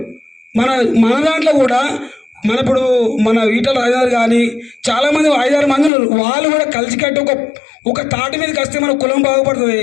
మన దాంట్లో కూడా ఇప్పుడు మన ఈటల రాజేందర్ కానీ చాలామంది 5-6 మంది ఉన్నారు. వాళ్ళు కూడా కలిసికట్టి ఒక తాటి మీదకి వస్తే మన కులం బాగుపడుతుంది.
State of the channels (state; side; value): drops out; right; at 5.9 s